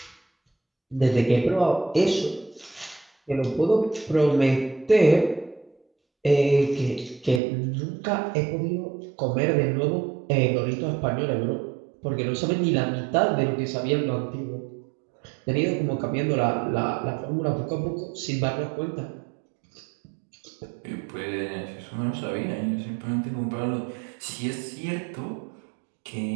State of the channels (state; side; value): drops out; left; at 7.4 s